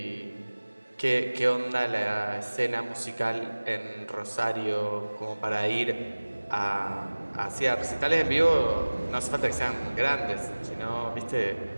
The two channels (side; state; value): both; inverted; correlation -1.00